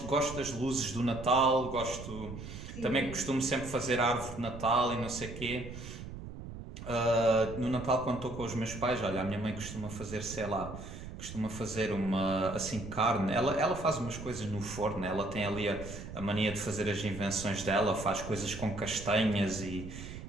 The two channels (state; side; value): noise; right; rumble, 10 dB below the sound